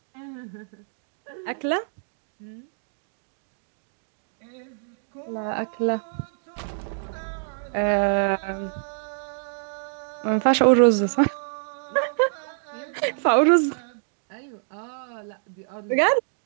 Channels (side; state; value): left; silent; digital silence